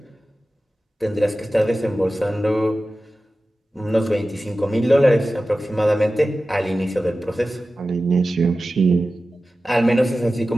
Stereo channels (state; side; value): normal; both; correlation 0.95